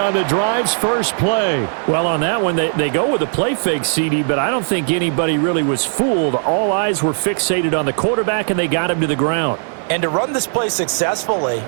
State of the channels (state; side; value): silent; left; 68 dB below the other